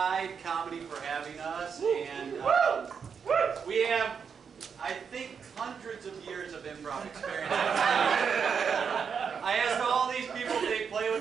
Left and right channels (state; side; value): quieter; left; 6.5 dB